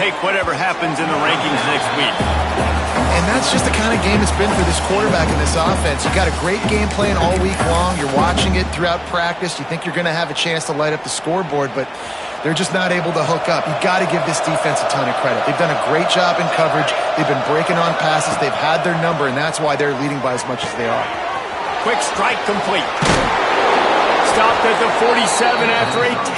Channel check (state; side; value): identical; both; correlation 1.00